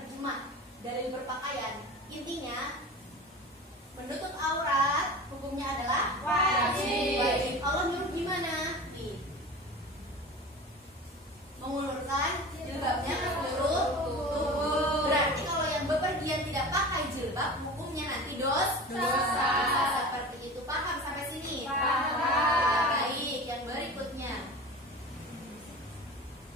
dalil berpakaian, intinya menutup aurat hukumnya adalah wajib. Allah nyuruh gimana? Mengulurkan jilbabnya ke seluruh tubuh. Berarti kalau yang bepergian tidak pakai jilbab, hukumnya nanti dosa. Seperti itu, paham sampai sini? Paham. Baik, yang berikutnya.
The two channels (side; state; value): both; normal; correlation 0.34